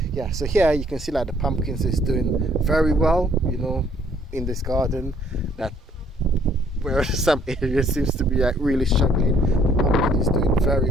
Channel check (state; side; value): normal; both; correlation 0.63